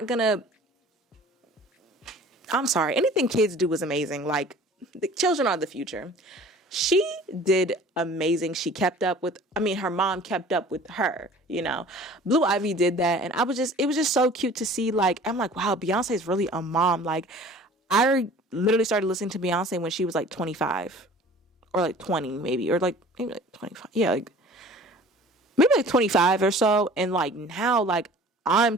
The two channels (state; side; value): normal; both; correlation 0.46